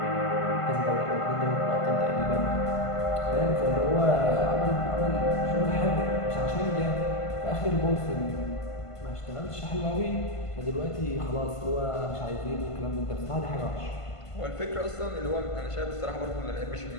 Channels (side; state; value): right; late; 1.5 ms